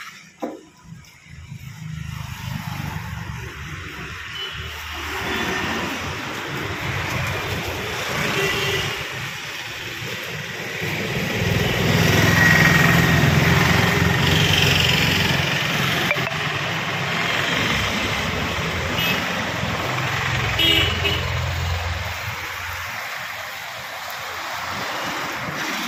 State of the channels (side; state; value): both; identical; correlation 1.00